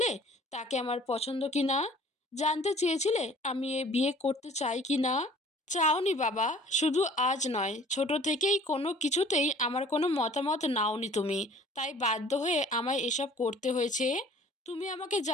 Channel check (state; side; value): normal; both; correlation 0.51